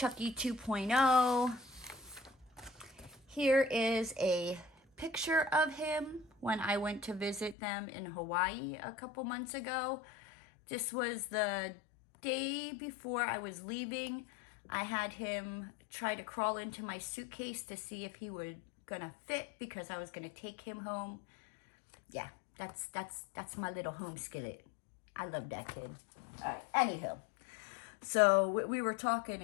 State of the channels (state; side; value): drops out; right; at 7.6 s